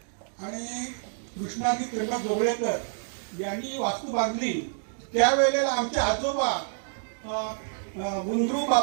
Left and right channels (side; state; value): left; silent; digital silence